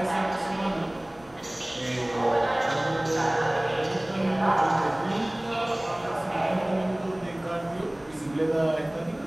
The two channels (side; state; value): right; noise; hum, 27 dB below the sound